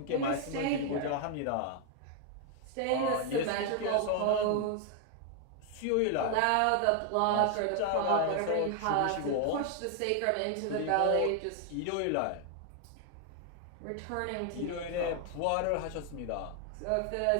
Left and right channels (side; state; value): both; different; correlation 0.00